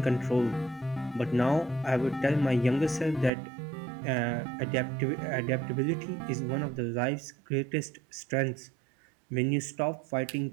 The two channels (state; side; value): drops out; left; at 3.3 s